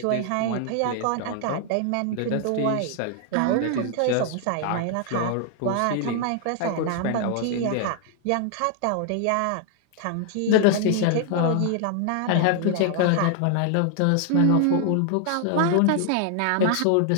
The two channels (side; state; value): both; different; correlation 0.00